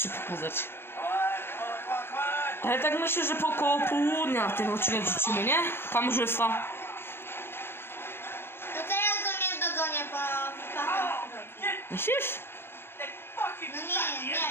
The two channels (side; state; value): right; late; 0.11 ms